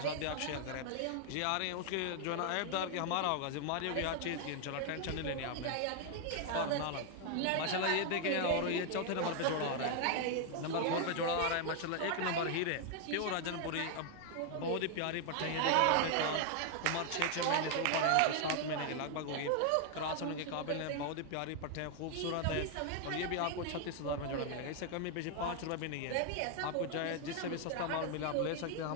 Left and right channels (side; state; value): both; different; correlation 0.00